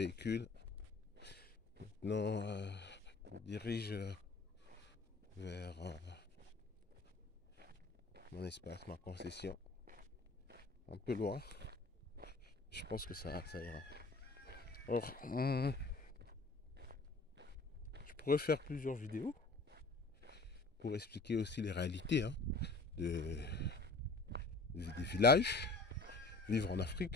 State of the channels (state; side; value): quieter; right; 3.4 dB